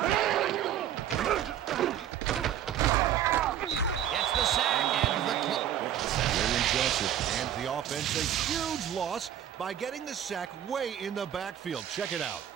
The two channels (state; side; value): quieter; left; 10.7 dB